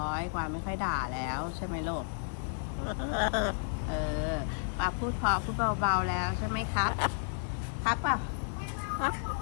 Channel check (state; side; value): silent; right; digital silence